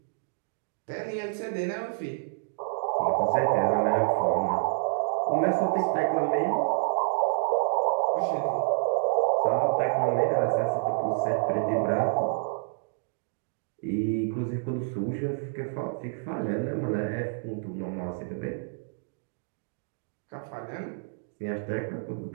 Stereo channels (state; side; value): silent; left; digital silence